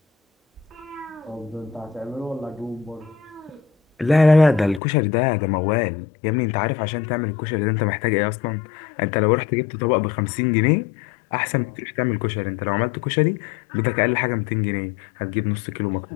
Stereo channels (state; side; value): drops out; right; at 4.8 s